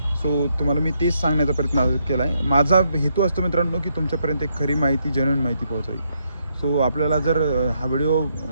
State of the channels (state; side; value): inverted; both; correlation -0.76